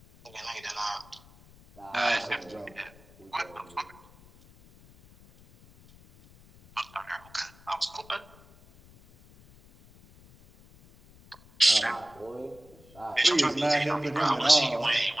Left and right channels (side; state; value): left; noise; rumble, 25 dB below the sound